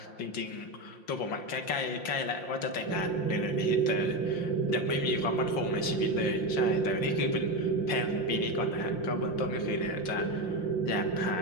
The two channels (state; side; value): late; right; 5.7 ms